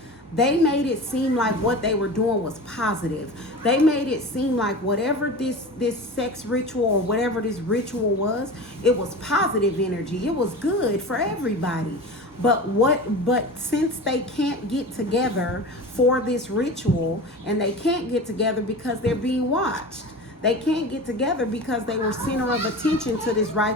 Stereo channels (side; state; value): both; normal; correlation 0.32